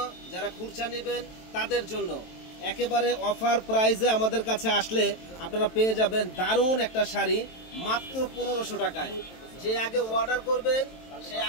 যারা খুচরা নেবেন তাদের জন্য একেবারে অফার প্রাইসে আমাদের কাছে আসলে আপনারা পেয়ে যাবেন দারুণ একটা শাড়ি মাত্র 1500 টাকায়। যে আগে অর্ডার করবেন সে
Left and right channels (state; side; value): late; right; 23 ms